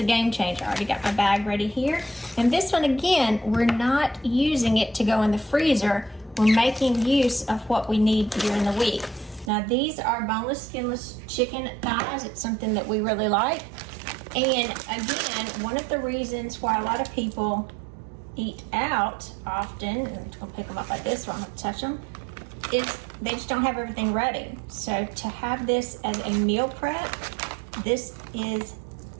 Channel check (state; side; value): drops out; left; at 9.5 s